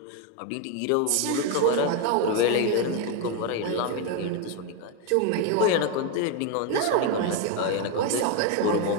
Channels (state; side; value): different; both; correlation 0.01